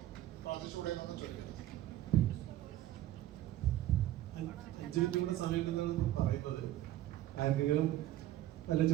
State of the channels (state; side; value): quieter; left; 13.9 dB